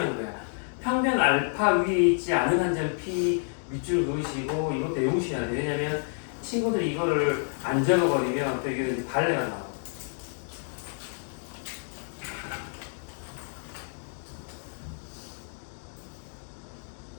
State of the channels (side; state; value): right; silent; 59 dB below the other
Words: 거야. 평면 알파 위에 있지 않은 한 점 P 밑줄 그으시고 이것도 외우셔야 돼. 왜냐면 친구들이 이거를 안 적어버리면 또 이게 발레가 나와.